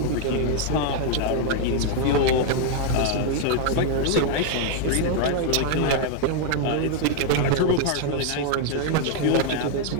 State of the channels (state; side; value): different; both; correlation 0.00